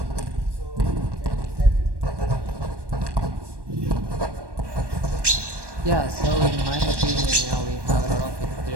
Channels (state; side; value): late; left; 1.1 ms